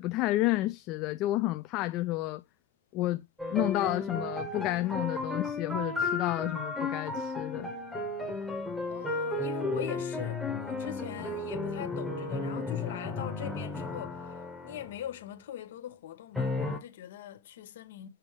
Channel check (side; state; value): right; quieter; 7.0 dB